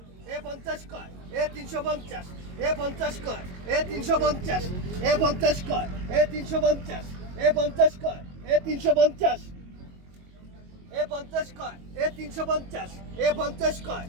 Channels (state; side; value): late; left; 22 ms